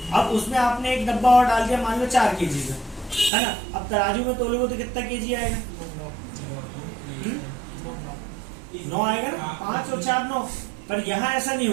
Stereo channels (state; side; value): drops out; left; at 3.3 s